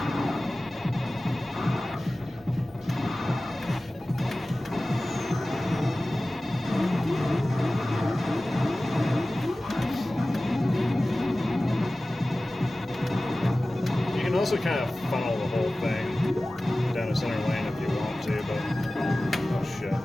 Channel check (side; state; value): both; normal; correlation 0.97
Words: You can also kind of funnel the whole thing down a center lane if you want to, but oh shit.